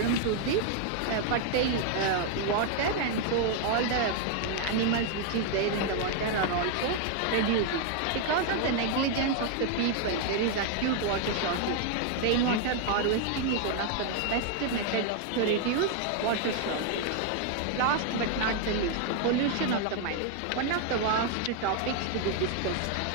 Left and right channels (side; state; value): both; different; correlation 0.00